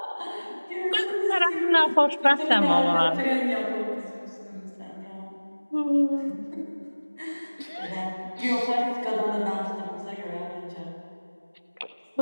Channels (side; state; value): both; inverted; correlation -1.00